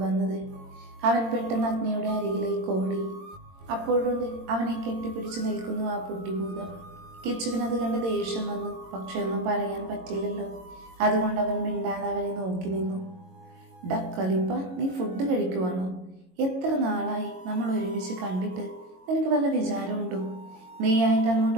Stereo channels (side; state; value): left; late; 22 ms